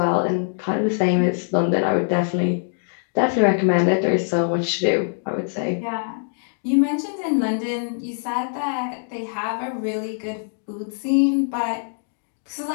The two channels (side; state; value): right; silent; digital silence